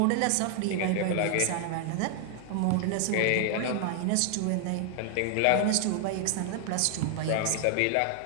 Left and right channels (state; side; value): different; both; correlation 0.00